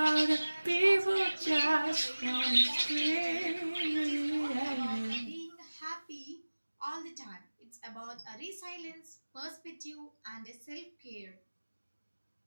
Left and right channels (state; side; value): inverted; both; correlation -1.00